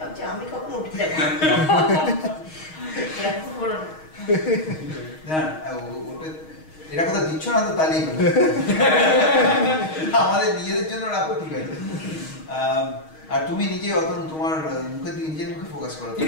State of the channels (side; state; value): right; late; 6.4 ms